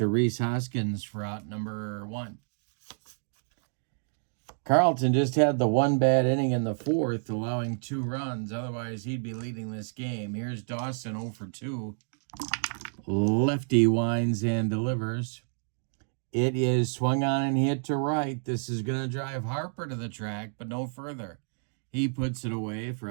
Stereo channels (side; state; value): left; silent; digital silence